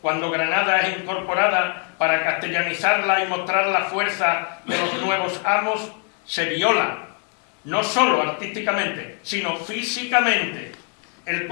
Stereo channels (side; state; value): right; quieter; 36.7 dB